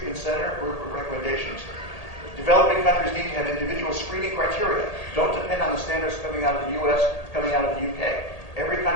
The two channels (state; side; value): late; right; 1.8 ms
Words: center recommendations. Developing countries need to have individual screening criteria. Don't depend on the standards coming out of the US, coming out of the UK. Every